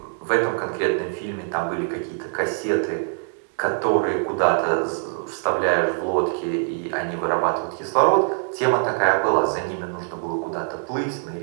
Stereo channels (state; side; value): silent; left; 62 dB below the other